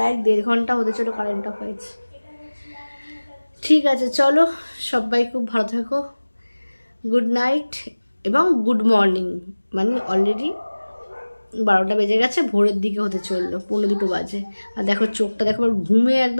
1.5 ঘন্টা হতে চলো কারেন্ট অফ হয়েছে। ঠিক আছে, চলো, সবাই খুব ভালো থাকো। গুড নাইট এবং গুড মর্নিং। অলরেডি 12টা বেজে গেছে, ভোরের দিকে হতে চললো, 1:45 বাজে। আর দেখো চোখটা দেখো, আমার ঘুমে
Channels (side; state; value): both; inverted; correlation -1.00